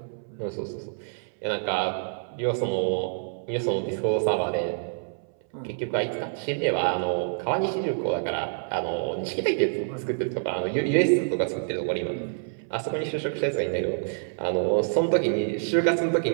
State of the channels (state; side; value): silent; left; 60 dB below the other